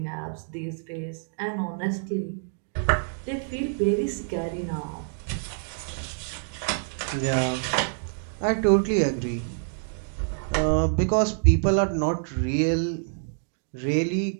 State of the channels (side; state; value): left; silent; digital silence